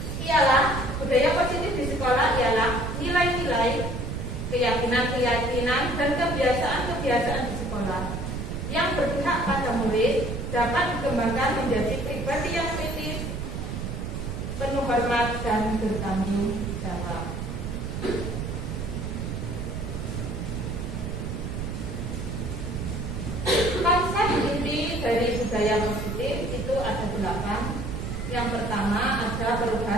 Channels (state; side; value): noise; right; rumble, 4 dB below the sound